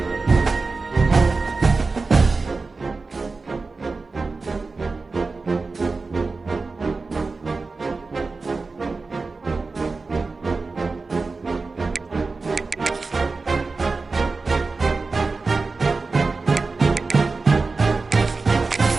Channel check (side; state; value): left; quieter; 4.0 dB